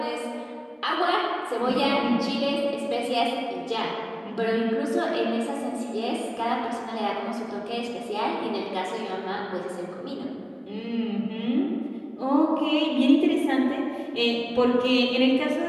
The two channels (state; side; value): identical; both; correlation 1.00